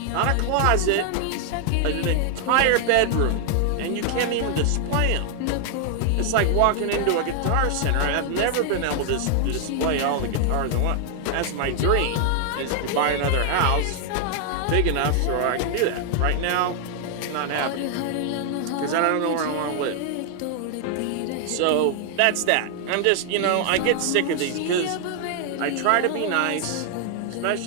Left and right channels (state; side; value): different; both; correlation 0.00